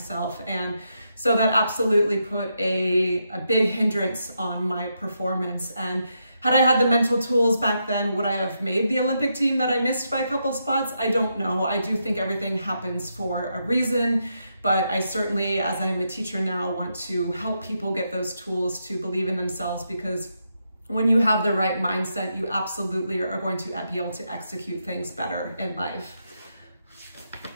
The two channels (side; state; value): both; inverted; correlation -0.82